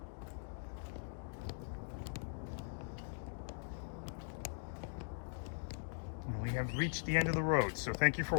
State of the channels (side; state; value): right; silent; digital silence